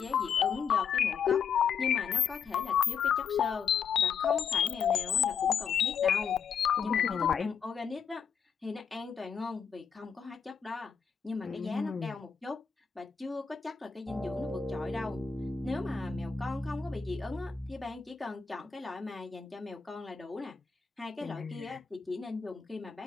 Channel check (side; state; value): right; quieter; 6.7 dB